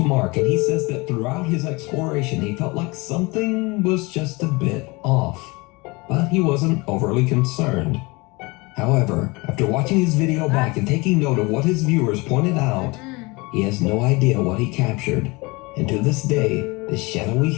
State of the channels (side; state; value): right; quieter; 25.3 dB